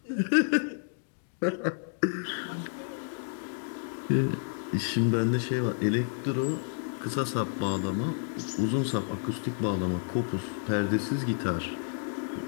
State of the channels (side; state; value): right; silent; digital silence